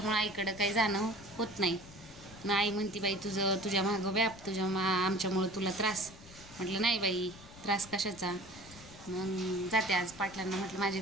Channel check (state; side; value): noise; left; rumble, 19 dB below the sound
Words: आईकडं काही जाणं होत नाही. मग आई म्हणती बाई तुझ्या मागं व्याप, आमच्यामुळं तुला त्रास. म्हटलं नाही बाई, त्रास कशाचा. मग जाते आज. पाटलांना म्हटलं माझी